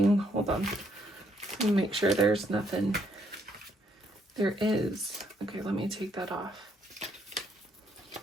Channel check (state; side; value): normal; both; correlation 0.71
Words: Hold on. Let me make sure there's nothing. There is. Okay, let me take that off.